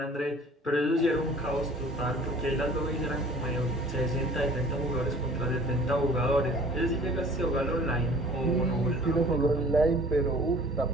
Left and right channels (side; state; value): both; normal; correlation 0.49